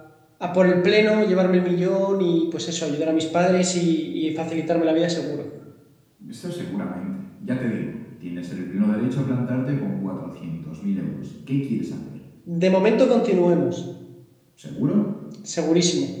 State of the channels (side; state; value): both; identical; correlation 1.00